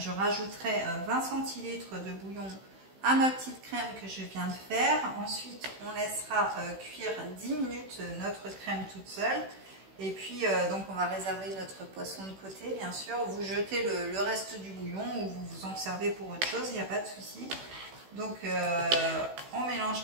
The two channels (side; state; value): left; late; 16 ms